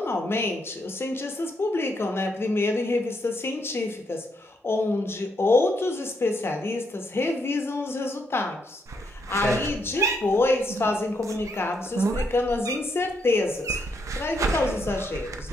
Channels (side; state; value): both; normal; correlation 0.77